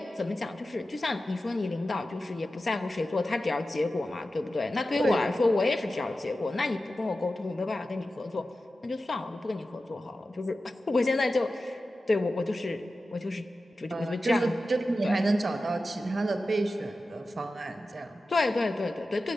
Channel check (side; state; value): both; normal; correlation 0.93